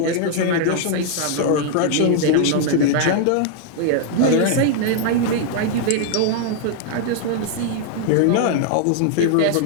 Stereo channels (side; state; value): both; different; correlation 0.00